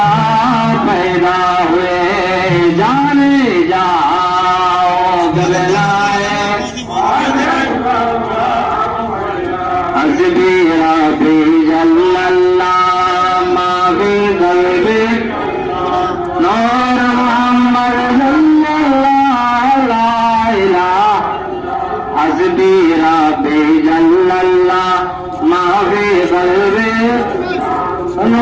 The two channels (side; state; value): both; identical; correlation 1.00